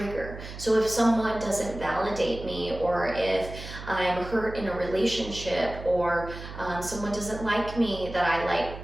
So if someone doesn't validate me, or if I'm hurt in a relationship, or someone doesn't like me, that I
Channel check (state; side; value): noise; right; hum, 11 dB below the sound